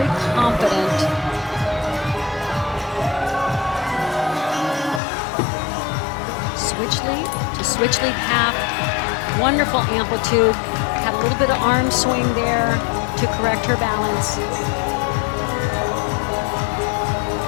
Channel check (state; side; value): drops out; right; at 5.0 s